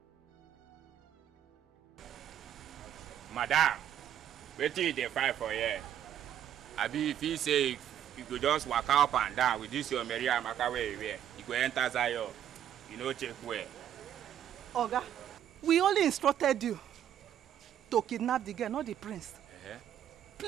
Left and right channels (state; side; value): quieter; left; 10.3 dB